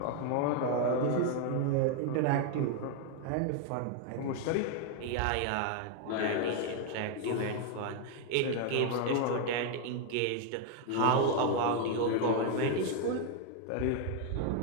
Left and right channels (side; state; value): both; different; correlation 0.01